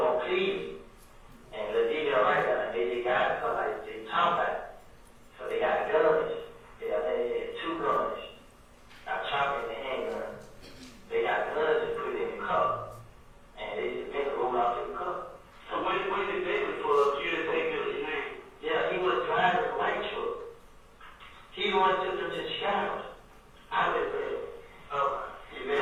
on plea, and the video right now, they got somebody, they talking about it. So they got guns, they had 2 guns, a chopper and a handgun. They got guns and put it in the cup, and they just been rolled out to the cup. So when did Bentley pull up, you didn't take Bentley's name? Yeah, he was driving a white truck. He the one took them to Chicago.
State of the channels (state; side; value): identical; both; correlation 1.00